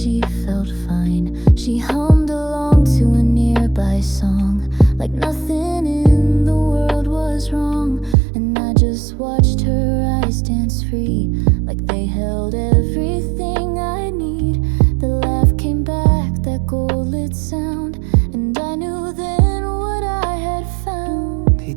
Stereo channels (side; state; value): left; drops out; at 8.2 s